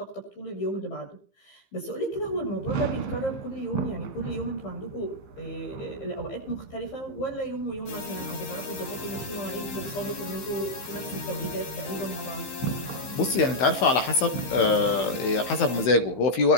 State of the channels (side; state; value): right; late; 15 ms